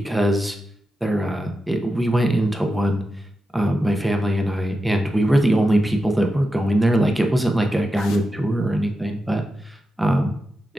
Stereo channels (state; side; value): normal; both; correlation 0.90